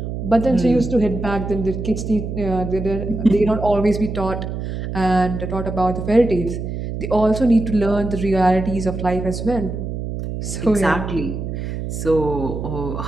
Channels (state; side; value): noise; right; hum, 5 dB below the sound